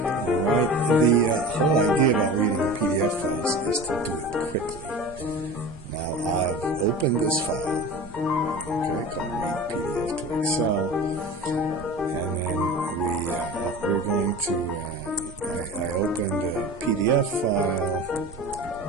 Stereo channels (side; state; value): both; normal; correlation 0.34